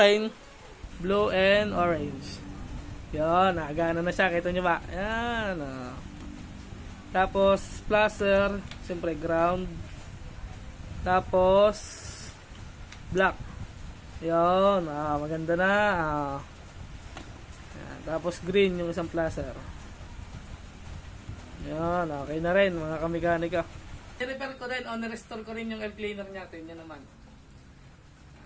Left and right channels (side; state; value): both; identical; correlation 1.00